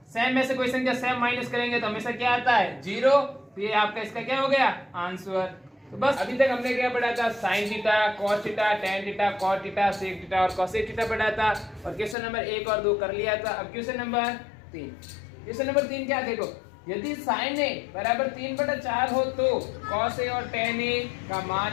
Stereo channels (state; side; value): drops out; right; at 12.2 s